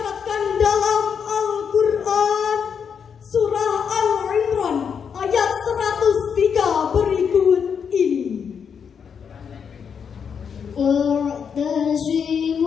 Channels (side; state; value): right; quieter; 6.9 dB